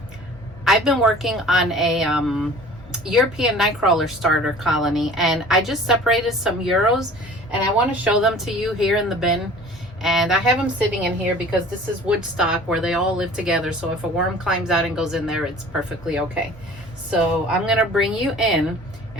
I've been working on a European nightcrawler starter colony, and I just separated some Euros, and I want to show them to you here in the bin. And I have them sitting in here because this is wood stock where they all live together. So if a worm climbs out and goes in there, it's perfectly okay. So I'm going to bring you in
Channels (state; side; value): normal; both; correlation 0.46